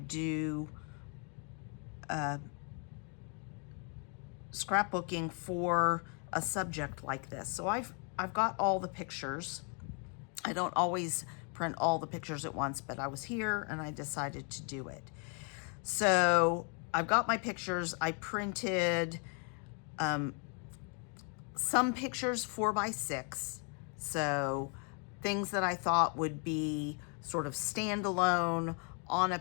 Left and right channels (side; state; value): right; quieter; 38.9 dB